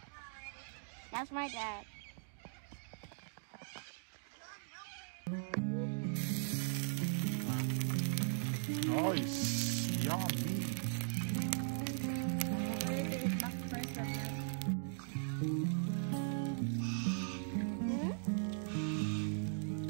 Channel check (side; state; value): left; silent; digital silence